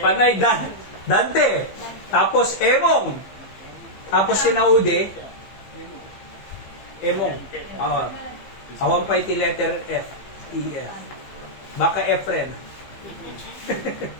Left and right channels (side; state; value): right; late; 15 ms